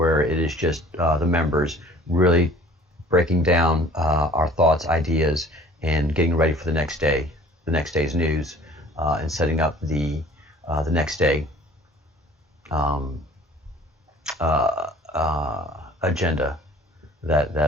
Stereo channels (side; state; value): both; normal; correlation 0.50